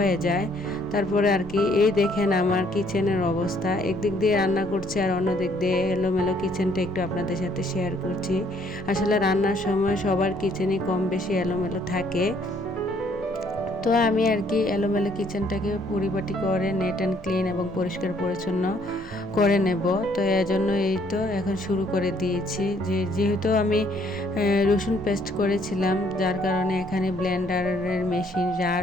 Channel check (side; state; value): both; normal; correlation 0.65